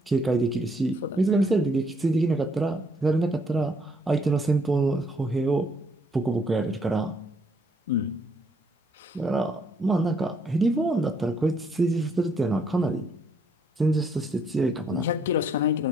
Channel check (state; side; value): normal; both; correlation 0.69